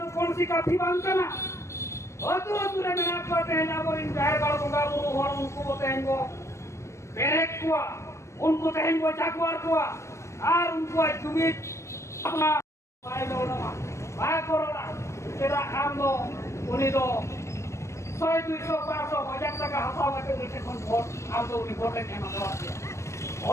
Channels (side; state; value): right; late; 0.14 ms